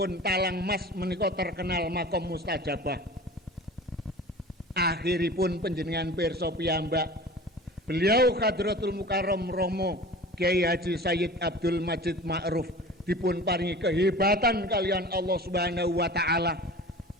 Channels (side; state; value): both; normal; correlation 0.39